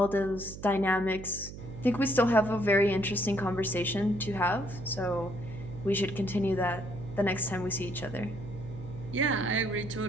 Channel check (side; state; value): right; noise; hum, 12 dB below the sound